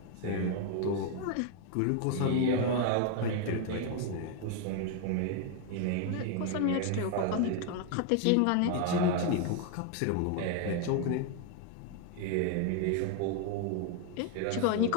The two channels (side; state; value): both; different; correlation 0.00